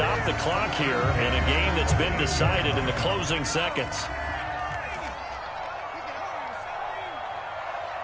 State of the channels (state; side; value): identical; both; correlation 1.00